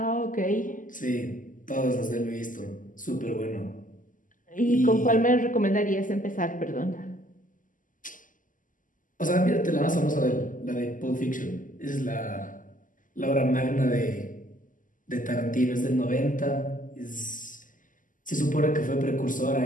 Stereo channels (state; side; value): late; right; 0.38 ms